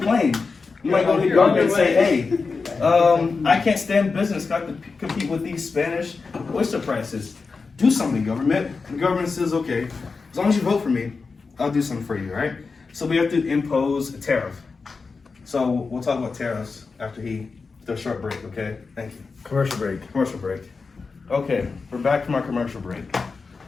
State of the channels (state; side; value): quieter; right; 4.5 dB